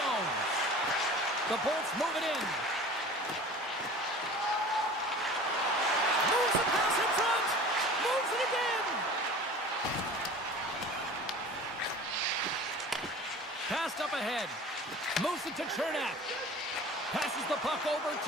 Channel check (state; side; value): normal; both; correlation 0.41